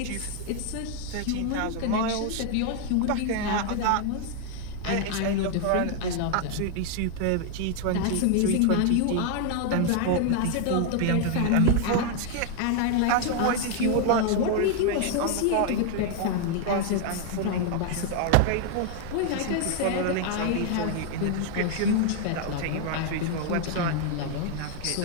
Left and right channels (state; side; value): different; both; correlation 0.00